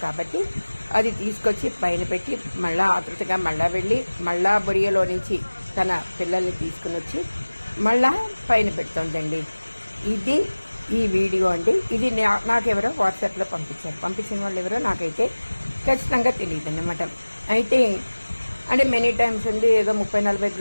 కాబట్టి అది తీసుకొచ్చి పైన పెట్టి మళ్ళా ఆతృతగా మళ్ళా వెళ్ళి మళ్ళా బొరియోలో నుంచి తన పిల్లల్ని తీసుకుని వచ్చి మళ్ళా పైన పెడుతుందండి. ఇది ఈ వీడియో అండి. ఇది నాకెవరో వాట్సాప్లో పంపించిన వాళ్ళు ఎవరో నాకైతే ఖచ్చితంగా తెలియదు అన్నమాట. అయితే అంటే మెనీ టైమ్స్ ఉంది, ఏదో 30-40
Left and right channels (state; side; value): inverted; both; correlation -1.00